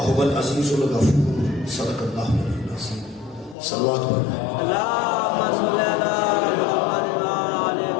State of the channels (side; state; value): right; drops out; at 3.6 s